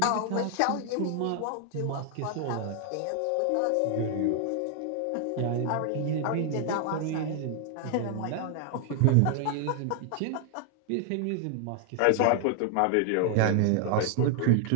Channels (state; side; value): different; both; correlation 0.00